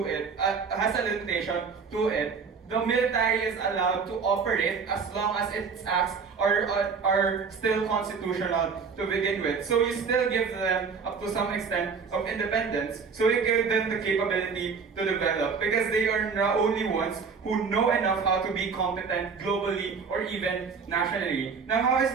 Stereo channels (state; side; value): quieter; left; 5.5 dB